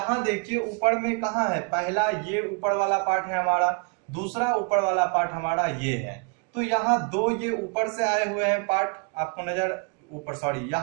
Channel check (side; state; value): left; quieter; 35.2 dB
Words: देखिए ऊपर में कहाँ है, पहला ये ऊपर वाला पार्ट है हमारा, दूसरा ऊपर वाला पार्ट हमारा ये है। तो यहाँ दो ये ऊपर से आए हुए हैं पार्ट, आपको नजर ऊपर, सॉरी